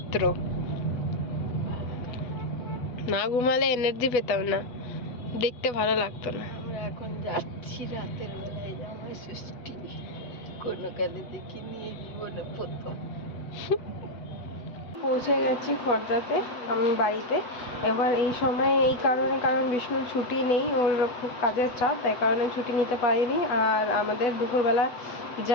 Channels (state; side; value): late; right; 8.1 ms